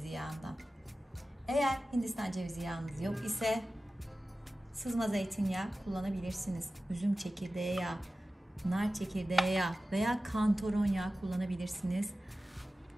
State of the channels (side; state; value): both; normal; correlation 0.95